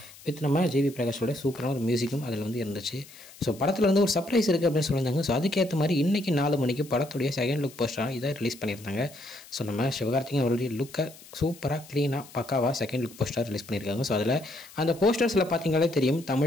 வித் நம்ம JV பிரகாஷோட சூப்பரான ஒரு மியூசிக்கும் அதில் வந்து இருந்துச்சு. ஸோ படத்தில் வந்து ஒரு சர்ப்ரைஸ் இருக்குது அப்படின்னு சொல்லியிருந்தாங்க. ஸோ அதுக்கேற்ற மாதிரி இன்றைக்கி 4 மணிக்கு படத்துடைய செகண்ட் லுக் போஸ்டராக இதை ரிலீஸ் பண்ணியிருந்தாங்க. ஸோ நம்ம சிவகார்த்திகேயன் அவருடைய லுக்கை சூப்பராக க்ளீனாக பக்காவாக செகண்ட் லுக் போஸ்டர் ரிலீஸ் பண்ணியிருக்காங்க. ஸோ அதில் அந்த போஸ்டர்ஸில் பார்த்தீங்களே தெரியும்,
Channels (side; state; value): left; noise; hiss, 20 dB below the sound